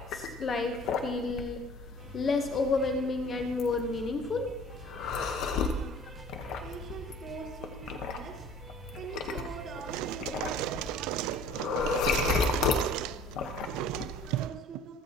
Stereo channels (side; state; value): both; normal; correlation 0.49